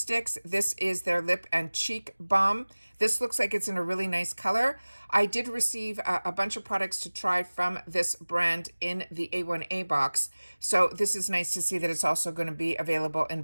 this is their lip and cheek balm. This looks like it's in a really nice color. I did receive a bunch of products to try from this brand in the A1A box. So this is nice to see that it's also going to be available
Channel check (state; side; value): inverted; both; correlation -1.00